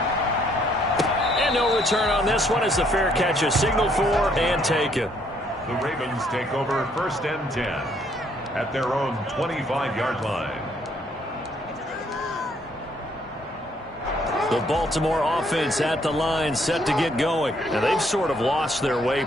And no return on this one as the fair catch is signaled for and taken. The Ravens take over 1st and 10 at their own 25-yard line. The Baltimore offense at the line set to get going. Now they've sort of lost their way,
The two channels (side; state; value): both; normal; correlation 0.67